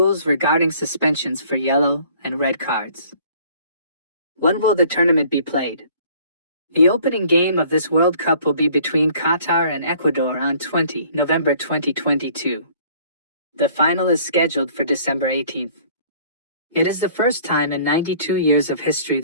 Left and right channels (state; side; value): inverted; both; correlation -0.55